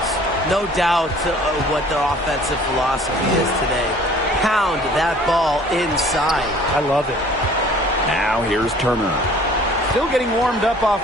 No doubt what their offensive philosophy is today. Pound that ball inside. I love it. Now here's Turner. Still getting warmed up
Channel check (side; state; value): both; normal; correlation 0.52